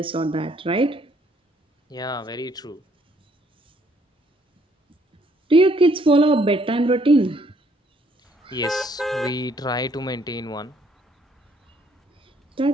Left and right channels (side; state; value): both; normal; correlation 0.66